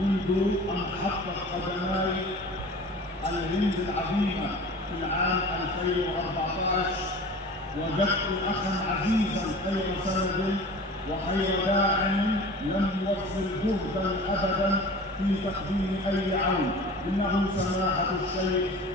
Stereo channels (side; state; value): both; normal; correlation 0.40